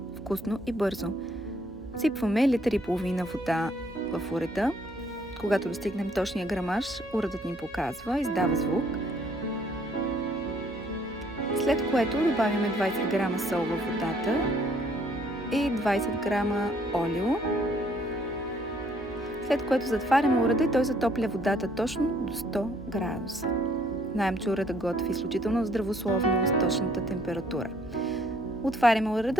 Вкусно и бързо. Сипваме литър и половина вода в урета. Когато достигнем точния грамаж, уредът ни показва, издава звук. След което добавяме 20 грама сол във водата и 20 грама олио. След което затваряме уреда и той затопля водата точно до 100 градуса. Знаем, че уредът готви изключително здравословно с точната температура. Отваряме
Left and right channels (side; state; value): right; noise; hum, 21 dB below the sound